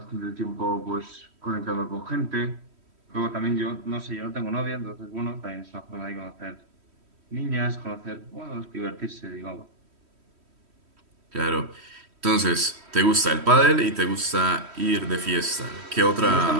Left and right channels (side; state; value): left; late; 3.1 ms